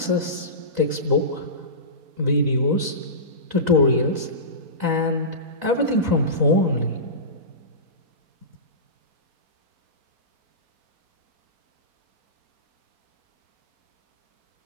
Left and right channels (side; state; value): left; late; 4.0 ms